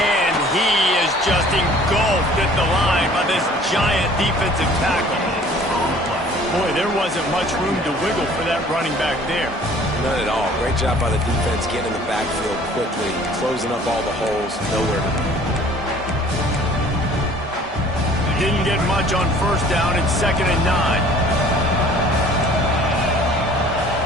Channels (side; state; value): both; normal; correlation 0.52